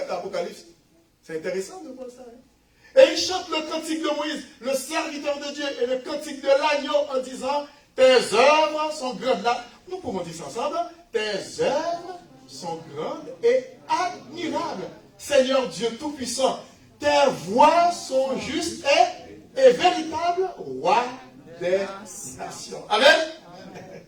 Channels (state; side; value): identical; both; correlation 1.00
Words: dans l'Apocalypse. C'est intéressant de voir ça. Hein? Et il chante le cantique de Moïse, le serviteur de Dieu, et le cantique de l'agneau en disant, tes œuvres sont grandes. Là, nous pouvons dire ça ensemble. Tes œuvres sont grandes et admirables. Seigneur Dieu Tout-Puissant, tes voies sont justes et véritables, roi des nations. Amen.